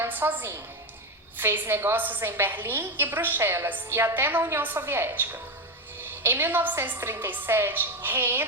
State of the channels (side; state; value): both; normal; correlation 0.13